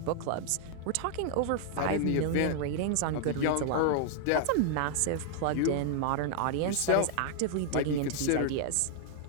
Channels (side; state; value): both; different; correlation -0.01